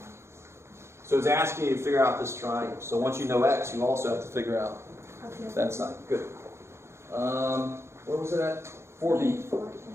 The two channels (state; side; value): late; left; 0.13 ms